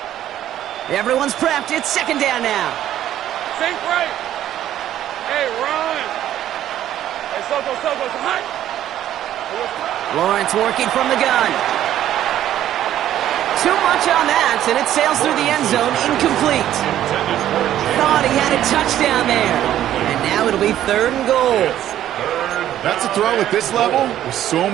Everyone's prepped. It's 2nd down now. Sink right. Hey, run. Hey, Soko, hot. Lawrence working from the gun. Too much on that, and it sails through the end zone, incomplete. Thought he had a touchdown there. And now it'll be 3rd and goal. That's a throw at this level with so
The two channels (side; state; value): left; quieter; 12.0 dB